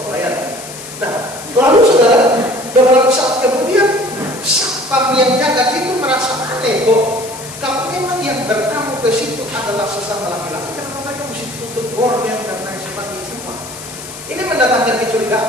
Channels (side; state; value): left; noise; hiss, 13 dB below the sound